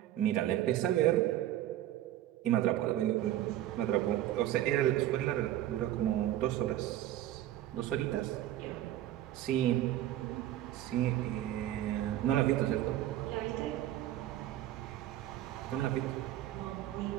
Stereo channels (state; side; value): quieter; left; 13.2 dB